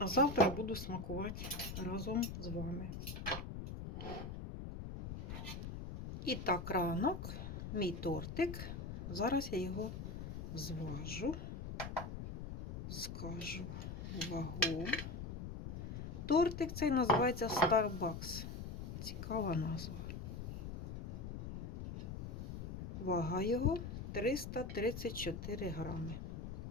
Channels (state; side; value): noise; left; rumble, 7 dB below the sound